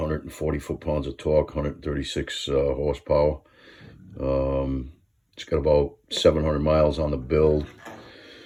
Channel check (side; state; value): both; identical; correlation 1.00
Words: foot-pounds of torque, 136 horsepower. It's got about 700 miles on the build.